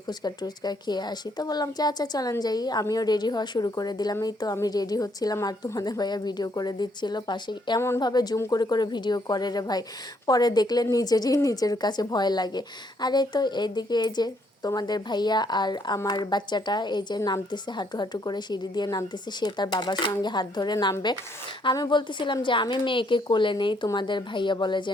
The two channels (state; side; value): normal; both; correlation 0.70